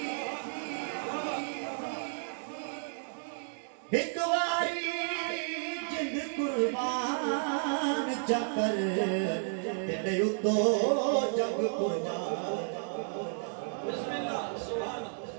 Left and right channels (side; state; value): left; silent; digital silence